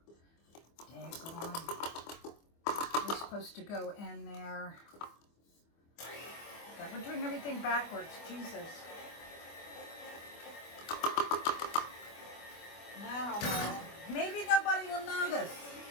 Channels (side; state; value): right; late; 24 ms